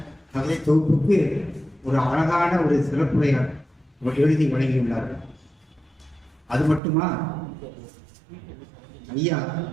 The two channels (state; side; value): drops out; left; at 6.8 s